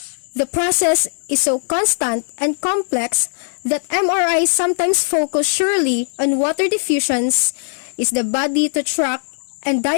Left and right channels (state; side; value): silent; right; digital silence